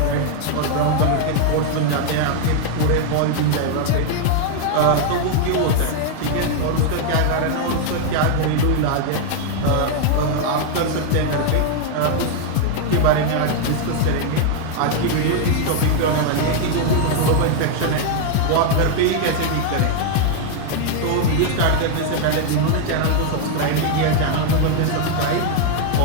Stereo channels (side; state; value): both; different; correlation 0.00